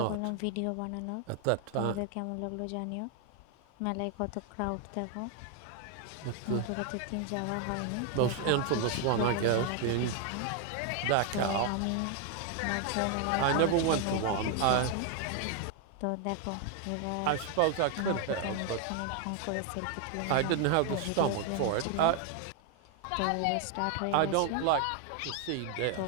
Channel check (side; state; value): both; different; correlation 0.00